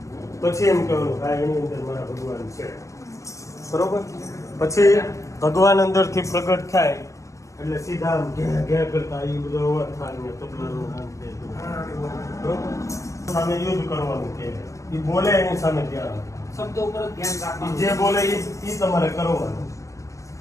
પછી એમ કહેવાનું હા એની અંદર મારા ભગવાન છે. બરોબર? પછી ભગવાન અંદરથી પ્રગટ થાય એટલે સીધા આમ ઘે કરતા એ બધો અવાજ થાય ને તબલાનું નામ છે. બરોબર? સામે યુદ્ધ કરવાનું કે એ બોલે એની સામે ધ્યાન શબ્દો ઉપર ધ્યાન ઈ રાખવાનું. જે બોલે એ તમારે કરવાનું.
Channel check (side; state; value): right; late; 0.16 ms